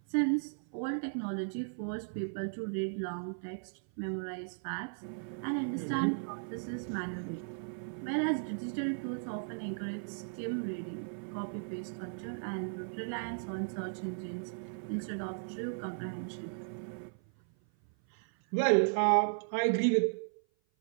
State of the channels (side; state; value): left; silent; 54 dB below the other